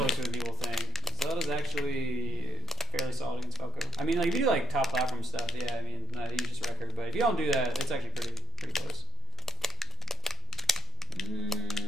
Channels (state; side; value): normal; both; correlation 0.51